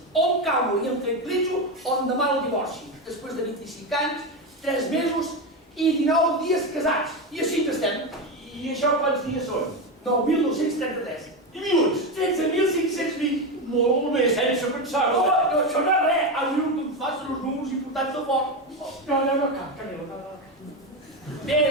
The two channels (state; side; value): normal; both; correlation 0.14